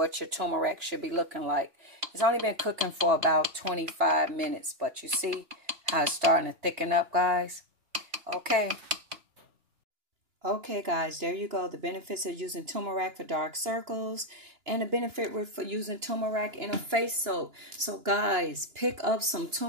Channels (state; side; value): late; left; 2.9 ms